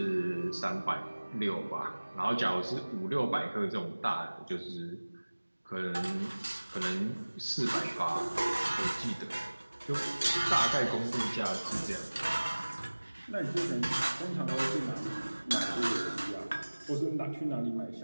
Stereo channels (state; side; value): inverted; both; correlation -1.00